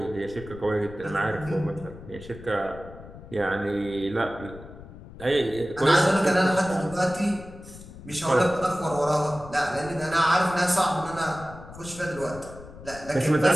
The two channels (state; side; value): noise; left; rumble, 16 dB below the sound